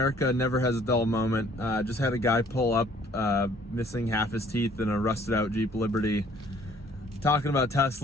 never has a dull moment. Just had a guy pull up, missing half his teeth in a rusted out Jeep Liberty, talking about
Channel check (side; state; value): both; normal; correlation 0.58